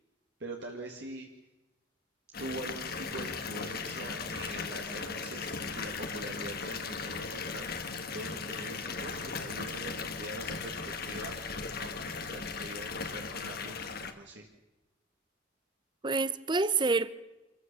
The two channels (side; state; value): both; normal; correlation 0.25